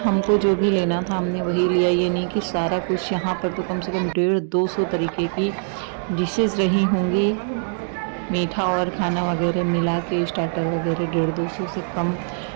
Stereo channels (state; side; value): silent; left; digital silence